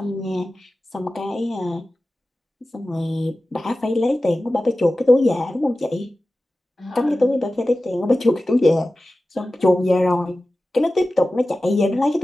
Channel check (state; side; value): normal; both; correlation 0.95